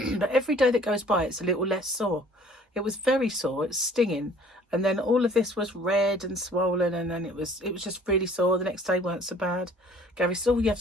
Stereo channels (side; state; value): both; normal; correlation 0.53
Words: every day that goes by, it's a little less sore. It was very sore. It's stinging. And then all of this was red and swollen, and then it was just really sore. The next day weren't so bad. Gary said, "Oh, you have